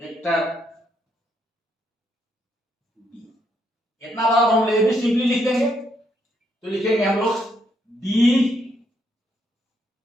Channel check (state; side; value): normal; both; correlation 0.75